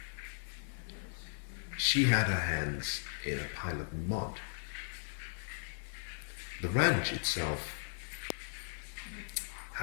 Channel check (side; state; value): right; silent; digital silence